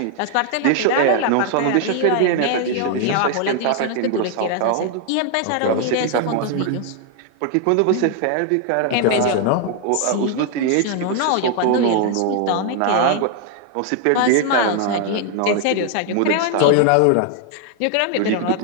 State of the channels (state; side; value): different; both; correlation 0.00